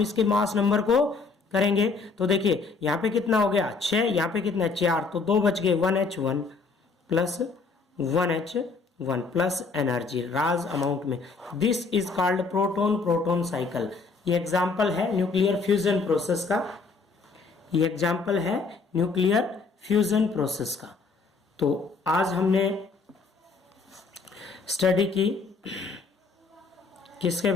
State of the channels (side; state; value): right; quieter; 4.4 dB